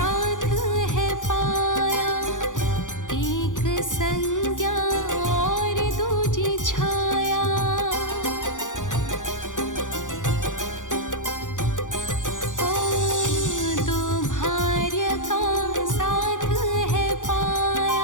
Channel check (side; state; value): right; late; 0.87 ms